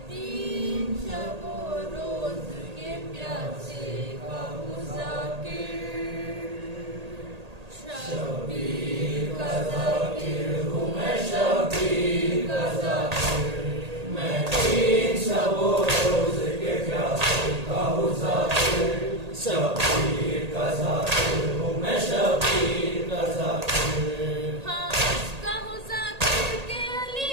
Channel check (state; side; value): late; left; 1.8 ms